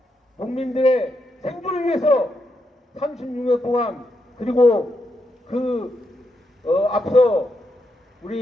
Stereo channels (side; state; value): both; normal; correlation 0.82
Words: 농민들의 생존을 위해서 36년 동안, 그리고 앞서